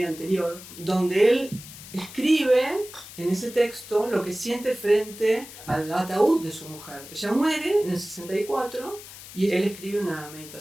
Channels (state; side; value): noise; left; hiss, 15 dB below the sound